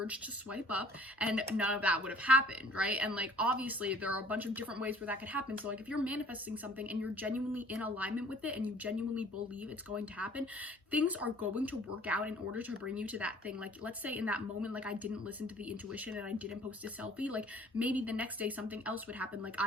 to swipe up, and none of that would have happened, right? And like obviously there are a bunch of different ways where that could happen. So like if you're manifesting something and you're genuinely in alignment with it and you genuinely believe it's going to happen, things are going to work out in order to bring you to that thing. Like let's say in that moment, like I didn't listen to the intuition and I didn't post a selfie, like maybe the next day something else would happen. Like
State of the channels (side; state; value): both; normal; correlation 0.53